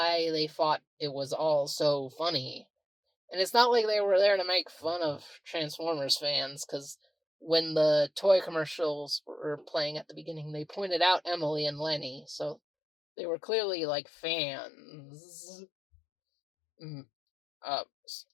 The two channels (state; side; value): drops out; right; at 12.6 s